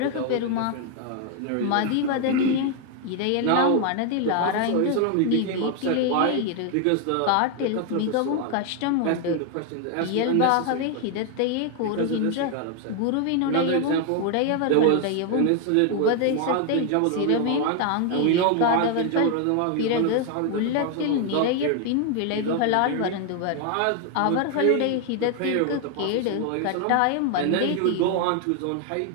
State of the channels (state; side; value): different; both; correlation 0.01